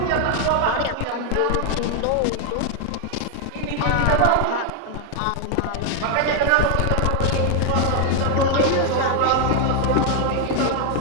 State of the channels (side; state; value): both; different; correlation 0.00